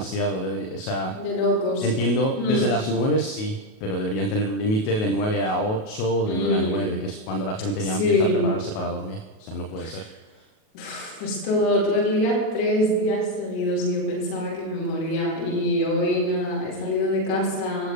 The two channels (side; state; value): right; late; 37 ms